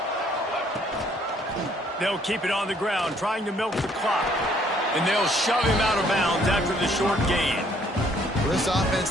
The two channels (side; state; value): both; normal; correlation 0.64